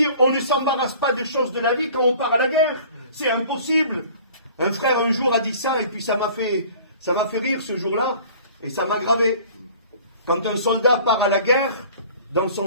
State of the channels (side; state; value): both; inverted; correlation -0.48